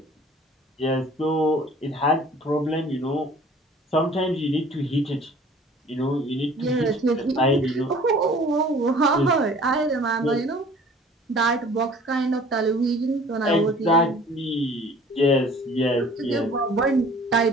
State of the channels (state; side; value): normal; both; correlation 0.49